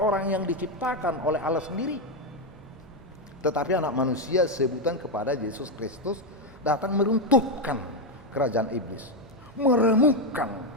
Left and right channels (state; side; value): normal; both; correlation 0.06